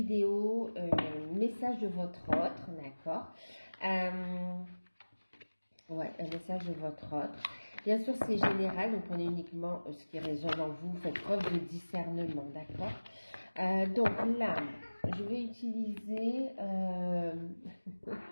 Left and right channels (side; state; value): both; inverted; correlation -1.00